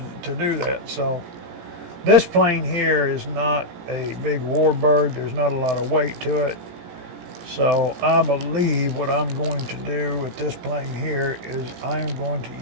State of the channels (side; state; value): left; late; 17 ms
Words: to do that. So this plane here is not a big warbird. There's not a lot of weight to it. So I believe what I'm going to do with this plane here is I am going